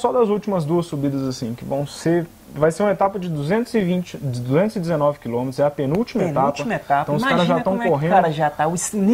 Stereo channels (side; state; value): both; identical; correlation 1.00